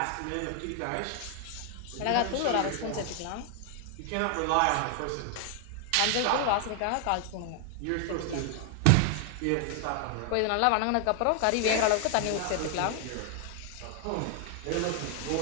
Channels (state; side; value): different; both; correlation 0.00